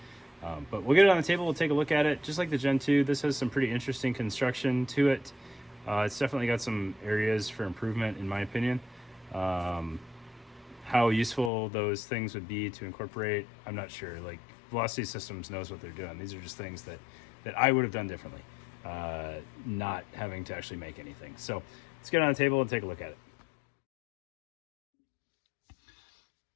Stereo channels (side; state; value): right; drops out; at 11.5 s